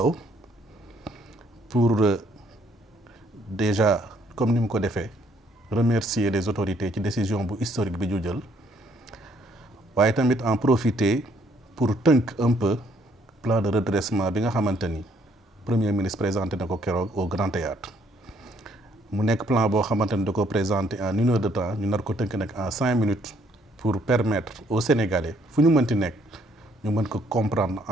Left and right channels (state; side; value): normal; both; correlation 0.67